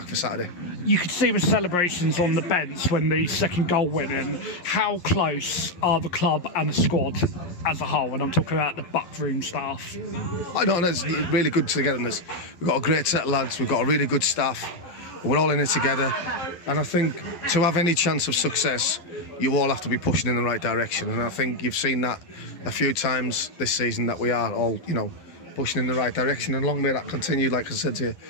for Saturday. You could see the celebrations on the bench when the second goal went in. How close are the club and the squad as a whole? And I'm talking about the backroom staff. I know, there's really good togetherness. We've got a great set of lads. We've got a really good staff. We're all in it together, and I think to have any chance of success, you all have to be pushing in the right direction. And I think you've seen that a few times this season, that we are all, pushing in the right direction, and long may that continue. Like I said to you,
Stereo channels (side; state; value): right; late; 11 ms